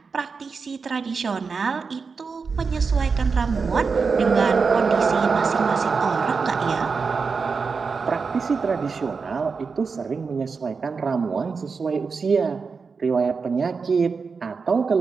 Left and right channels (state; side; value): quieter; left; 5.0 dB